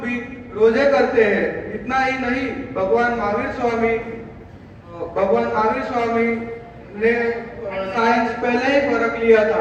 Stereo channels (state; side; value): identical; both; correlation 1.00